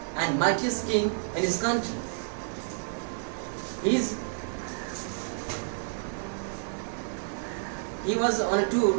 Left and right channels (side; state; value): left; silent; 58 dB below the other